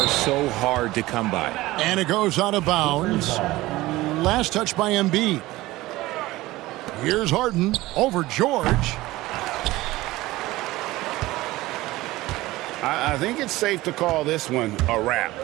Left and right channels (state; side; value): quieter; left; 18.4 dB